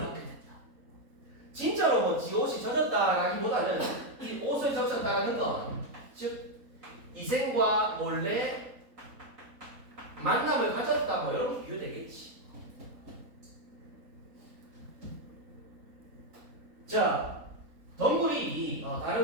된다. 진짜로 뭐 지 옷이 젖었다라기보다는 이 옷을 적셨다는 건 즉 이생과 몰래 만남을 가졌다 뭐 이런 비유되겠지. 자, 덩굴이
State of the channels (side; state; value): left; late; 3.8 ms